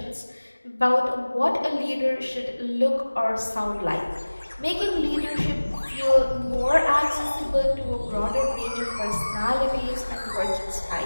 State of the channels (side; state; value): both; inverted; correlation -1.00